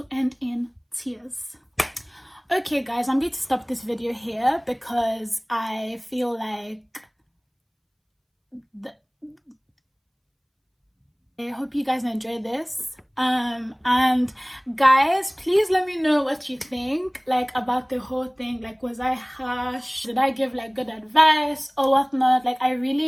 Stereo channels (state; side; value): identical; both; correlation 1.00